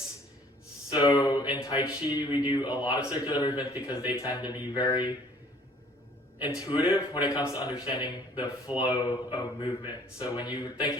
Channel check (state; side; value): normal; both; correlation 0.56